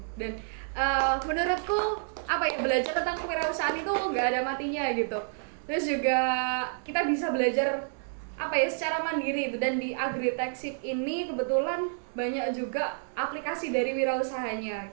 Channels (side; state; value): left; silent; 58 dB below the other